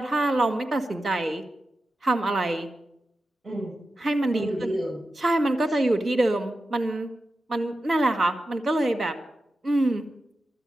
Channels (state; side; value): normal; both; correlation 0.91